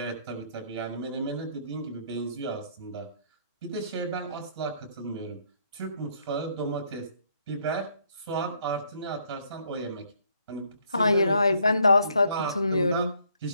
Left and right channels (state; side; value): inverted; both; correlation -0.68